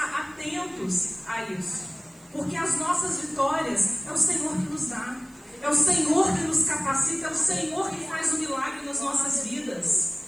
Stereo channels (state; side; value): noise; right; hiss, 28 dB below the sound